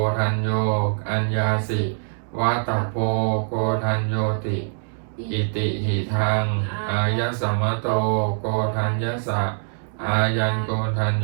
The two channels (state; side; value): silent; left; digital silence